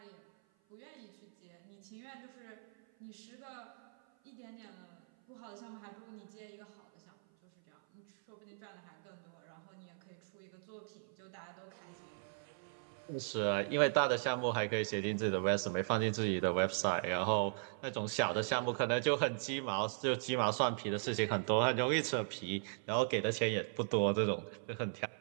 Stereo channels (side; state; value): left; silent; 52 dB below the other